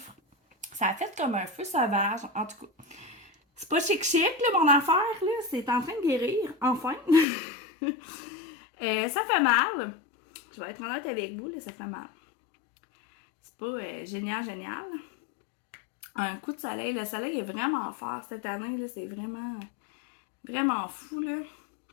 Ça a fait comme un feu sauvage. En tout cas, c'est pas chic-chic, là, mon affaire, là. C'est en train de guérir, enfin. Ça fait mal. Je vais être honnête avec vous, là, ça fait mal. C'est pas génial, génial. Un coup de soleil. Le soleil est vraiment fort cette année, là. C'est vraiment, vraiment fou, là.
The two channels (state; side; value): drops out; right; at 7.2 s